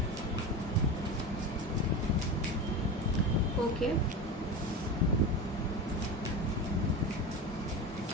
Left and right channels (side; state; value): both; normal; correlation 0.25